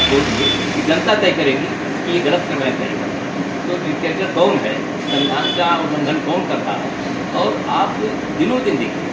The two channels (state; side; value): identical; both; correlation 1.00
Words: छोड़ दिए कि जनता तय करेगी कि ये गलत करना करेगा। तो डिक्टेटर कौन है, संविधान का उल्लंघन कौन करता है। और आप दिनों दिन देखिए,